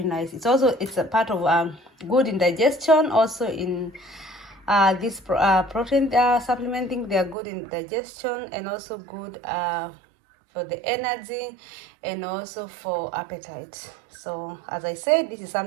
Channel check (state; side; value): drops out; left; at 7.4 s